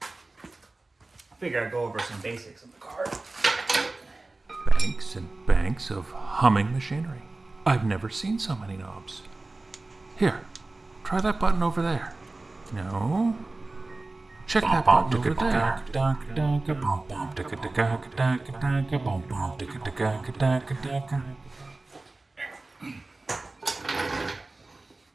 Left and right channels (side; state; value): left; quieter; 3.2 dB